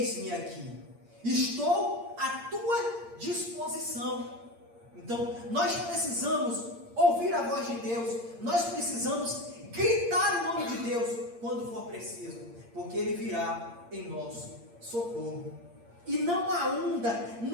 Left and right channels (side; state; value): left; late; 8.6 ms